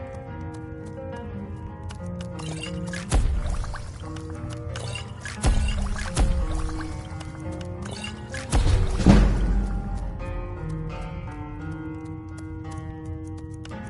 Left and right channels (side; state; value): both; identical; correlation 1.00